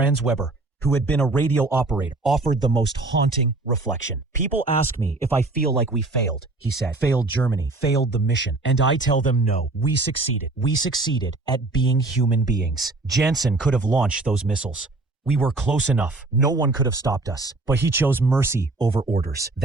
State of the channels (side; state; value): left; quieter; 3.2 dB